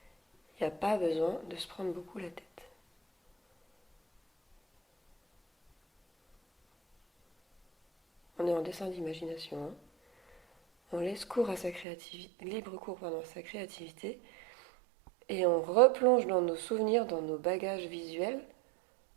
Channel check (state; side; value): drops out; left; at 11.9 s